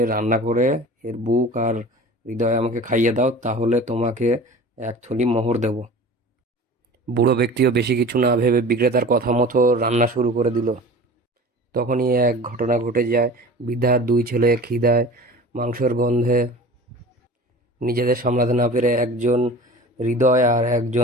রান্না করে এর বুক আর হৃদয় আমাকে খাইয়ে দাও, তাহলে তোমাকে 1 থলি মোহর দেব। বুড়ো ব্যক্তিও বেশি কিছু না ভেবে বিক্রেতার কথা মতো রান্না শুরু করে দিল। তখনই এক ঘটনা ঘটে যায়। বৃদ্ধার 2 ছেলে খিদায় মাংসের গন্ধে নিজেদের সামলাতে না পেরে একজন হৃদয় আর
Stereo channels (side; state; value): both; normal; correlation 0.39